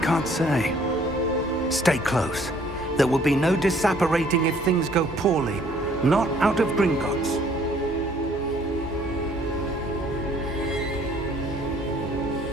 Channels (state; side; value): normal; both; correlation 0.60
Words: say. Stay close. There will be no disapparating if things go poorly. Not out of Gringotts.